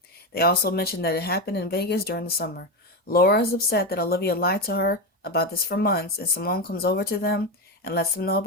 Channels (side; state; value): both; normal; correlation 0.14